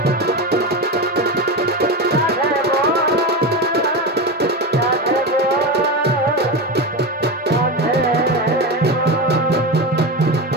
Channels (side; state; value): both; normal; correlation 0.19